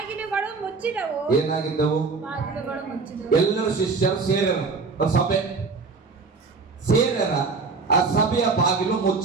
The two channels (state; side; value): quieter; left; 4.4 dB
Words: ಮುಚ್ಚಿದವು. ಏನಾಗಿದ್ದವು? ಬಾಗಿಲುಗಳು ಮುಚ್ಚಿದವು. ಎಲ್ಲರೂ ಶಿಷ್ಯರು ಸೇರರ, ಸಭೆ ಸೇರರ, ಆ ಸಭೆಯ ಬಾಗಿಲು